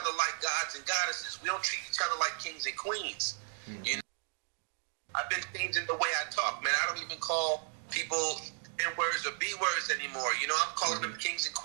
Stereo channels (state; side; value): silent; left; 55 dB below the other